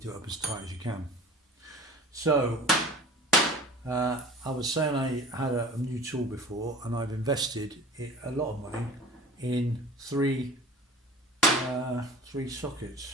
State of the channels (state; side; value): normal; both; correlation 0.42